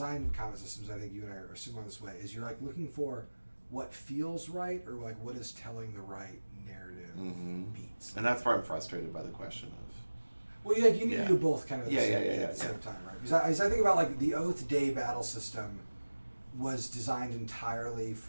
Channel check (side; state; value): both; inverted; correlation -1.00